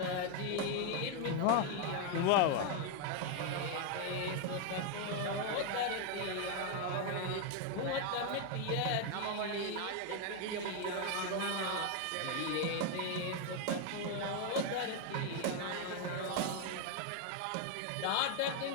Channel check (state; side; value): different; both; correlation 0.01